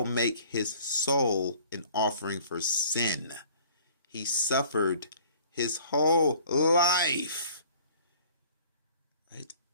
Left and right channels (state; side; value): inverted; both; correlation -0.52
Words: make his soul an offering for sin. He suffered his whole life. Right?